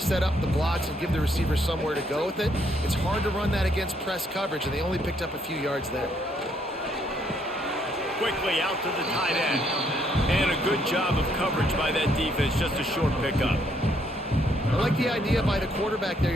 up the blocks and give the receivers somewhere to go with it. It's hard to run that against press coverage, and they only picked up a few yards there. Quickly out to the tight end. And a good job of coverage by that defense, just a short pickup. I like the idea by the quarterback there.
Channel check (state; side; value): normal; both; correlation 0.71